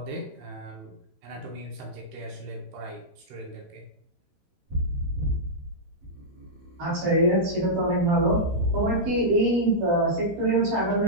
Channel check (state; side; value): late; left; 13 ms